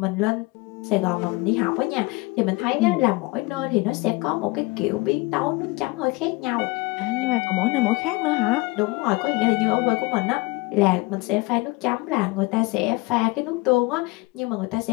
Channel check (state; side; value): quieter; right; 24.1 dB